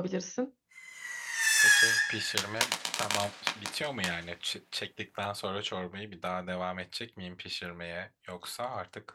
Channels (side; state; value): both; identical; correlation 1.00